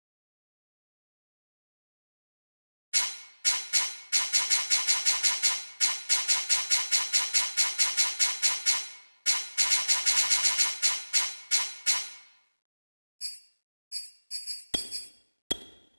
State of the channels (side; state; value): both; inverted; correlation -1.00